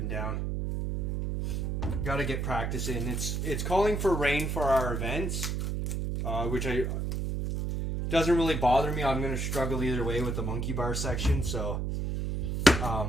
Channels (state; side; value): noise; right; hum, 1 dB below the sound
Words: down. Got to get practice in. It's calling for rain for our events, which doesn't really bother me. I'm gonna struggle either way with the monkey bar section. So